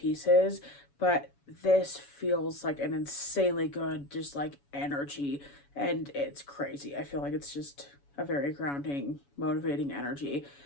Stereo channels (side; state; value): right; late; 7.1 ms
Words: But this feels like an insanely good, just like energy, and it's crazy. I feel like it's just a very grounding, motivating energy.